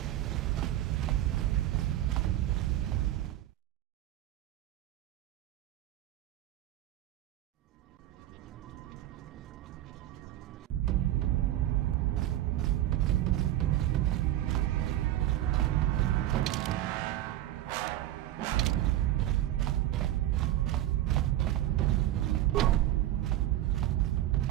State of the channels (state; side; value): quieter; left; 13.8 dB